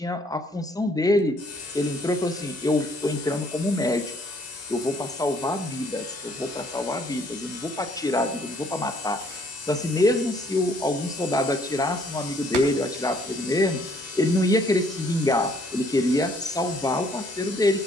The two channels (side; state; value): both; normal; correlation 0.63